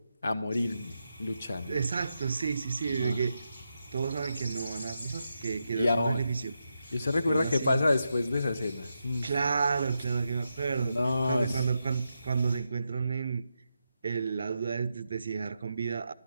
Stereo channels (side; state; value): both; inverted; correlation -0.86